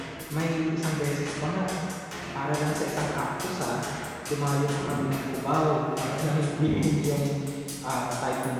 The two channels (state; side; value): identical; both; correlation 1.00